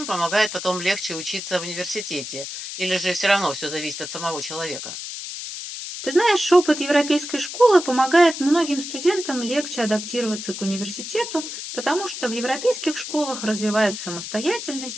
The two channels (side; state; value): left; noise; hiss, 8 dB below the sound